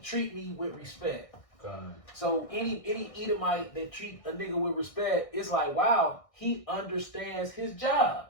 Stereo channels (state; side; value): late; right; 1.6 ms